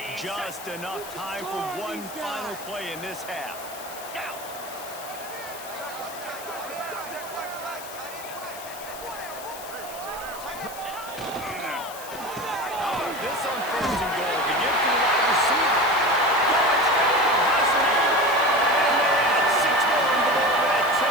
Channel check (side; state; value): left; noise; hiss, 14 dB below the sound